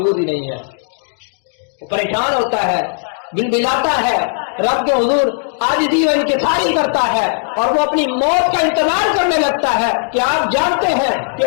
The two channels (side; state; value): right; silent; digital silence